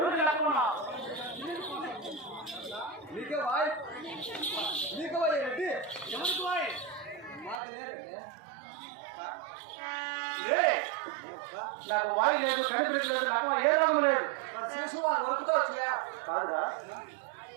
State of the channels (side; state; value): left; drops out; at 7.6 s